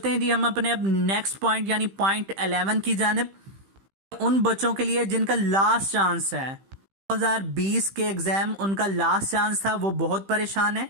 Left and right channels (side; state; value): left; late; 15 ms